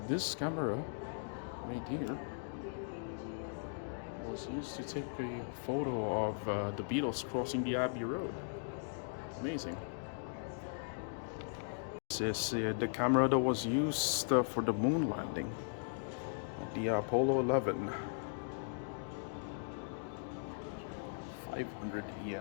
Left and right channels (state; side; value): silent; right; digital silence